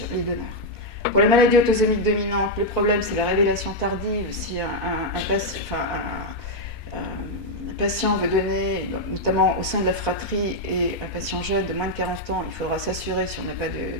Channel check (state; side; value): normal; both; correlation -0.01